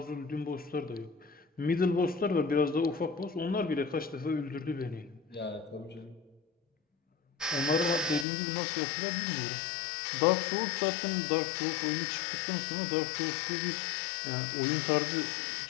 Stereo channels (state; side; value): drops out; right; at 8.2 s